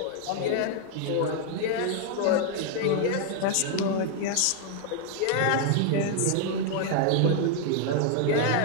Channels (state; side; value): different; both; correlation 0.00